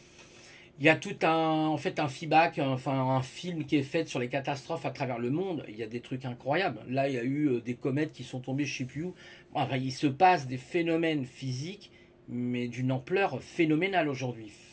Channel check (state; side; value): identical; both; correlation 1.00